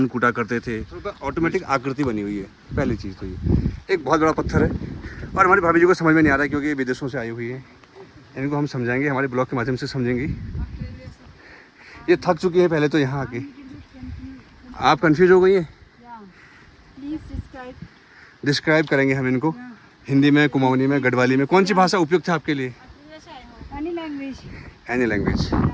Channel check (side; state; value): both; identical; correlation 1.00